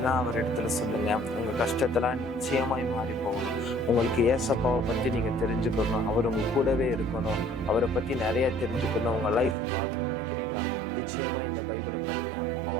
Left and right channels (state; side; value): drops out; left; at 9.6 s